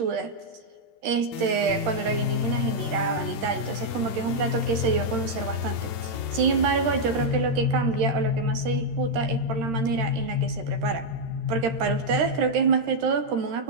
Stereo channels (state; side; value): late; left; 13 ms